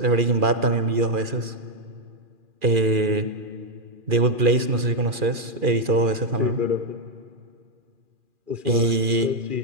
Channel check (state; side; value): late; left; 2.4 ms